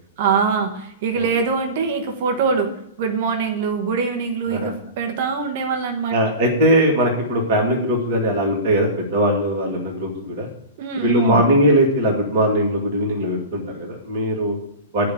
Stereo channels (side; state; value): both; inverted; correlation -0.30